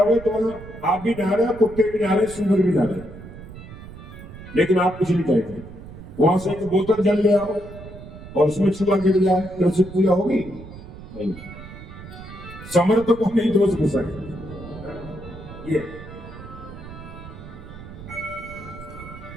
तो आप भी नहा रहे, कुत्ते भी नहा रहे, सुअर भी नहा रहे, लेकिन आप कुछ नहीं कहेंगे। वहां से एक बोतल जल ले आओ और उसमें चूहा गिर जाए, तो उससे पूजा होगी नहीं। समर्थकों ने दोष घुसाए। ये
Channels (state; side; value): noise; right; rumble, 14 dB below the sound